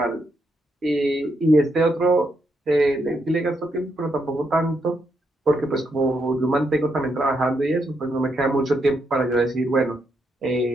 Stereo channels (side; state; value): both; normal; correlation 0.79